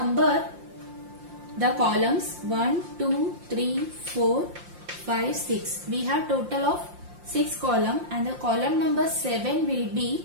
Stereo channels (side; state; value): left; late; 5.7 ms